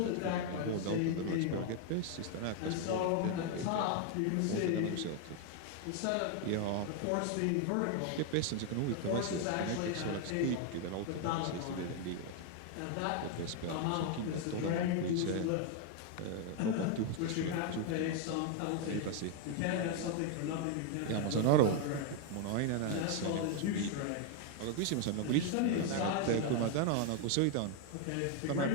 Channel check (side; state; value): both; different; correlation 0.01